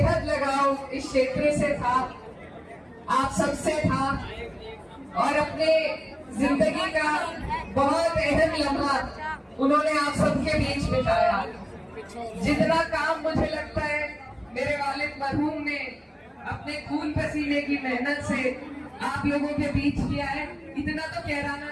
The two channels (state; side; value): identical; both; correlation 1.00